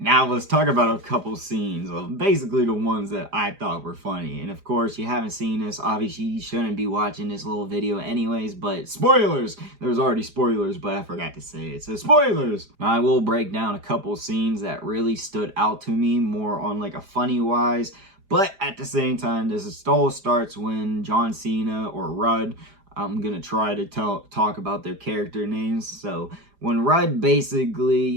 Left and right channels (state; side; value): late; left; 4.9 ms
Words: Now let's talk about a couple scenes, basically the ones that I thought were funny. And of course, you haven't seen this, obviously you shouldn't be watching this little video anyways, but spoilers! There's already spoilers, but I forgot to say it, so spoilers! I will break down a couple scenes that really stood out to me, more on like a funny wise, but at the same time, this all starts when John Cena or Rudd, I'm gonna try to talk about their character names, so when Rudd